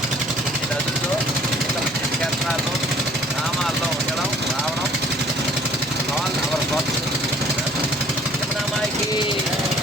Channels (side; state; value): both; normal; correlation 0.56